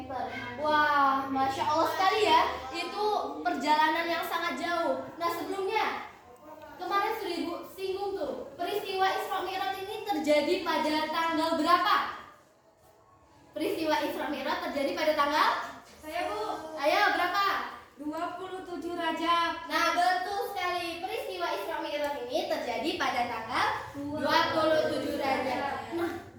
Wah, Masya Allah sekali ya. Itu perjalanan yang sangat jauh. Nah, sebelumnya kemarin sudah Ibu singgung tuh, peristiwa Isra Mi'raj ini terjadi pada tanggal berapa? Peristiwa Isra Mi'raj terjadi pada tanggal? Saya Bu. Ayo berapa? 27 Rajab. Nah, betul sekali. Peristiwa Isra Mi'raj ini terjadi pada tanggal 27 Rajab. Nah,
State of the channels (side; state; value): both; identical; correlation 1.00